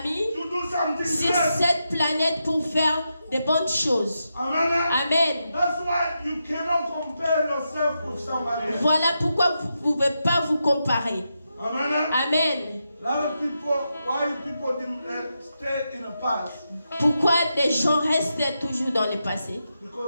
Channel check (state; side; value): inverted; both; correlation -0.86